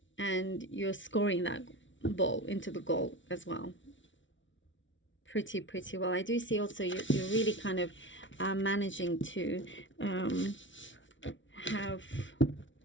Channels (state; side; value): late; right; 0.56 ms